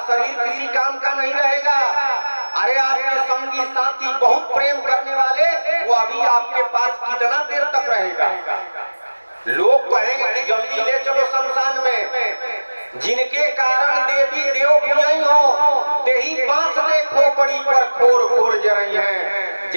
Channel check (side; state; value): both; inverted; correlation -1.00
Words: शरीर किसी काम का नहीं रहेगा। अरे आपके संगी साथी बहुत प्रेम करने वाले वो अभी आपके पास कितना देर तक रहेगा? लोग कहेंगे कि जल्दी ले चलो शमशान में। जिनके कारण देवी देव पूजई हो ते ही बांस देखो पड़ी पर खोर खोर जरई है।